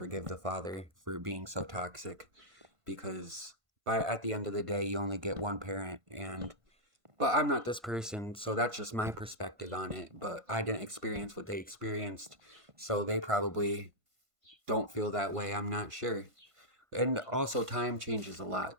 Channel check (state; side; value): late; left; 1.5 ms